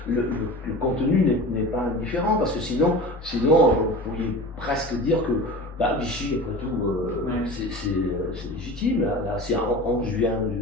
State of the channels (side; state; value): both; normal; correlation 0.34